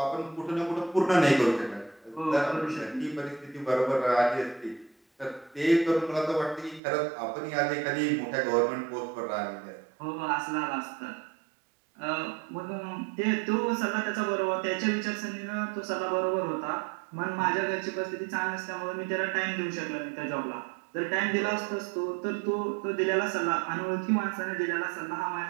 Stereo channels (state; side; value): drops out; left; at 6.8 s